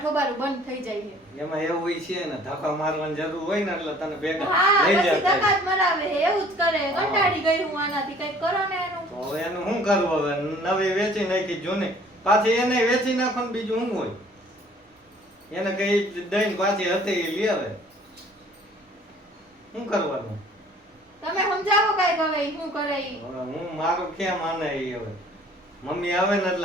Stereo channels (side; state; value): both; normal; correlation 0.54